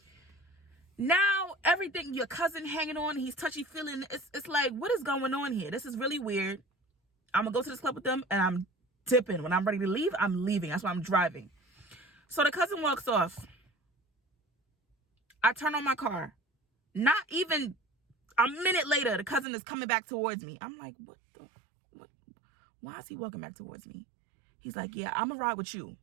Now everything, your cousin hanging on, he's touchy feeling. It's like, what is going on here? This is really weird. I'm going to go to this club with them and I'm dipping. When I'm ready to leave, I'm leaving. That's why I'm driving. So the cousin walks off. I turn on my car. Not even a minute later, the cousin is coming back towards me. I'm like, what? Why is he walking back towards me? He's like, yeah, I'm gonna ride with you.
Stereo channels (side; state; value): left; drops out; at 19.5 s